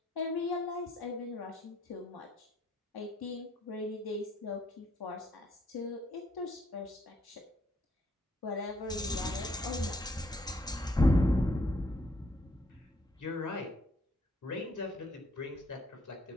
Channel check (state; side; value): normal; both; correlation 0.68